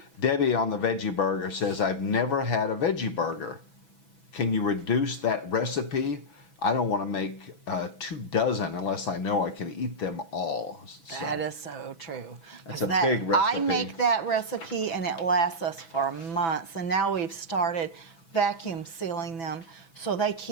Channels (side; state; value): right; late; 6.0 ms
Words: Debbie on the veggie burger says, I've never had a veggie burger. Can you reduce that recipe? I don't want to make 24 unless I know I can eat them all. So, That is so true. That's 'Cause a big recipe. I make that recipe and it lasts us for months. And now we've started vacuum sealing them so they